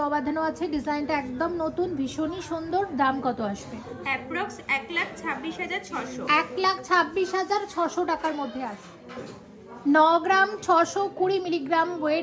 বাঁধানো আছে, ডিজাইনটা একদম নতুন, ভীষণই সুন্দর। দাম কত আসবে? অ্যাপ্রক্স 1,26,600। 1,26,600 টাকার মধ্যে আসবে। 9 গ্রাম 620 মিলিগ্রাম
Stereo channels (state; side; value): identical; both; correlation 1.00